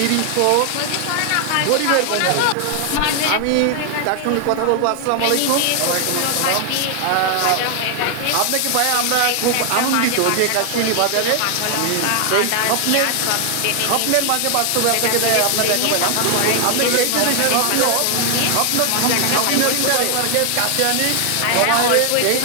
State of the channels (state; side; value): different; both; correlation 0.00